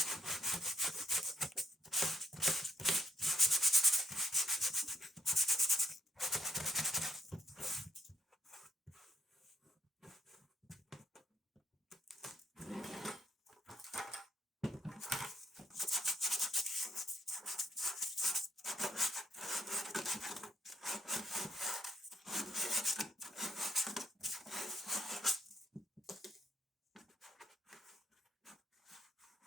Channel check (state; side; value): normal; both; correlation 0.73